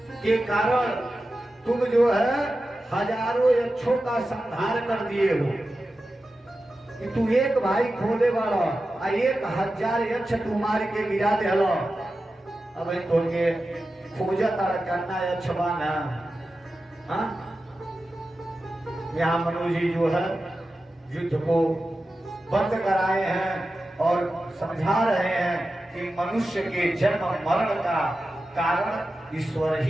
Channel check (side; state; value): both; normal; correlation 0.93